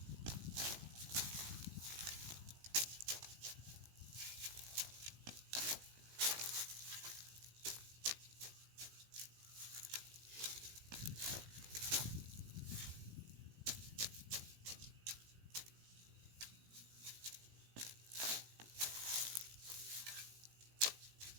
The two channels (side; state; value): left; late; 18 ms